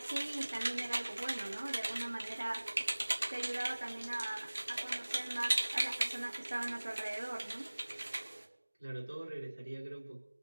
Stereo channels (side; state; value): both; inverted; correlation -1.00